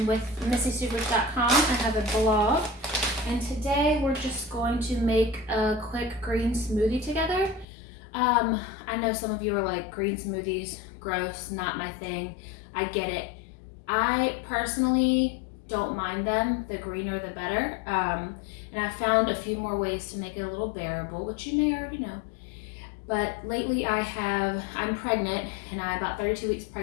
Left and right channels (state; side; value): drops out; right; at 7.7 s